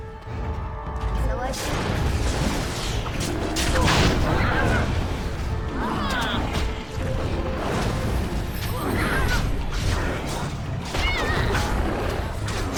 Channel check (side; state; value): both; identical; correlation 1.00